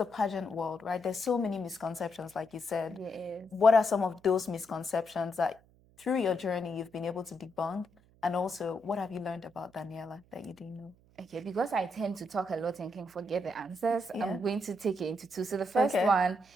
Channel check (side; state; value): right; noise; hum, 30 dB below the sound